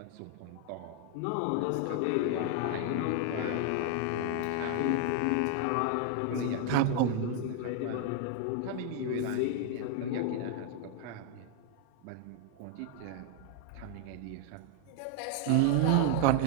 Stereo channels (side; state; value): both; different; correlation 0.00